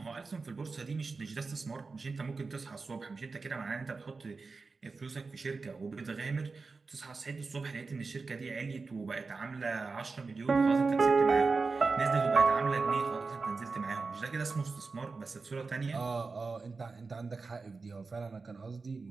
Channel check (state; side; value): quieter; left; 4.2 dB